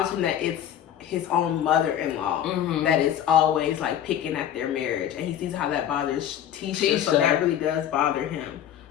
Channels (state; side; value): quieter; right; 10.5 dB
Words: him that it's his own mother-in-law that is always, like, picking at their marriage. And he sees how that bothers Tisha. So that really does bother him.